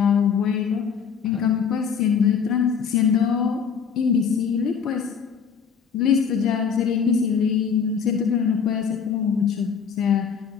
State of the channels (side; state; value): right; quieter; 6.8 dB